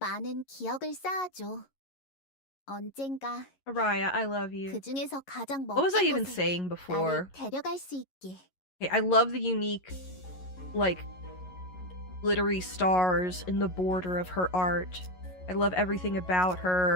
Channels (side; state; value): right; late; 11 ms